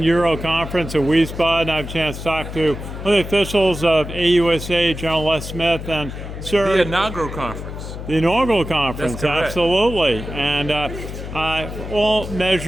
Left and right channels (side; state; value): left; noise; hum, 9 dB below the sound